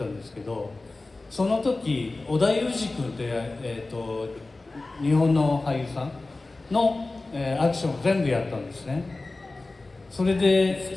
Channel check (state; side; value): quieter; right; 3.2 dB